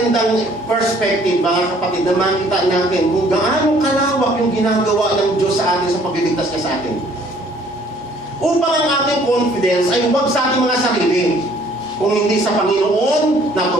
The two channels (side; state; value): both; normal; correlation 0.59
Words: perspective, mga kapatid, na makita natin kung gaano kalawak yung ginagawa ng Diyos sa atin sa pagliligtas niya sa atin. Upang ang ating confidence ay huwag sa ating mga sarili, kung hindi sa Panginoon na